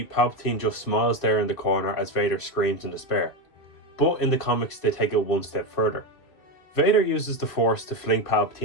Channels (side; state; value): right; late; 2.4 ms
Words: Palpatine just smiles there in the corner as Vader screams in despair. But in the comics they take it one step further. Vader uses the Force to fling